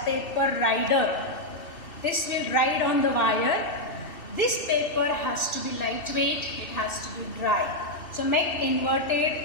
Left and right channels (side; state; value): right; late; 2.7 ms